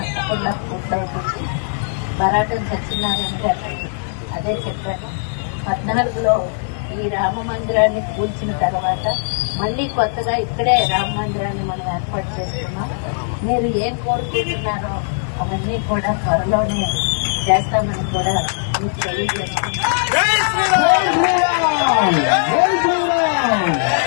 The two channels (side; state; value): right; silent; digital silence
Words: పూర్తవుతుంది. బరాటం సత్యనారాయణ గారు అదే చెప్పారు. 14లో ఈ రామ మందిరాన్ని కూల్చిన తర్వాత మళ్లీ కొత్తగా ఇక్కడే రామ మందిరాన్ని మనం ఏర్పాటు చేస్తున్నాం. మీరు ఏం కోరుకుంటున్నారో అవన్నీ కూడా త్వరలోనే చేస్తామని కూడా మీకు తెలియజేస్తున్నాం.